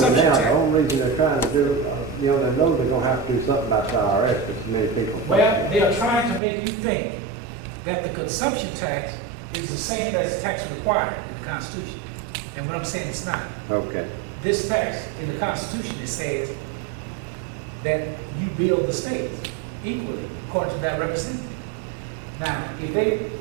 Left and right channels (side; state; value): left; drops out; at 6.4 s